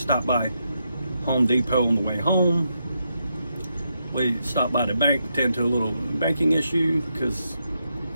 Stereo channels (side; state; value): both; inverted; correlation -0.82